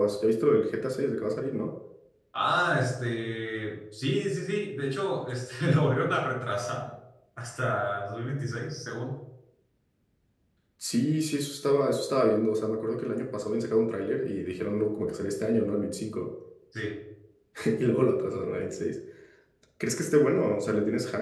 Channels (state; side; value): identical; both; correlation 1.00